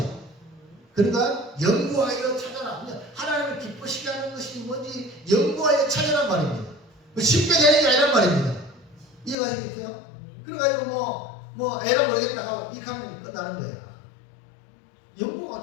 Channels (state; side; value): drops out; right; at 9.3 s